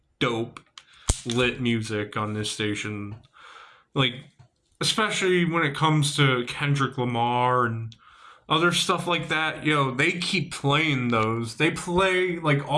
dope, lit music on this station. Like, especially when it comes to Kendrick Lamar and other stuff like that, they keep playing those. They play, like,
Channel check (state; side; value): identical; both; correlation 1.00